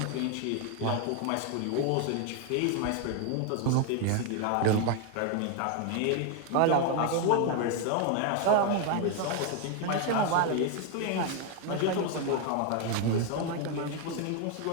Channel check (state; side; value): different; both; correlation 0.01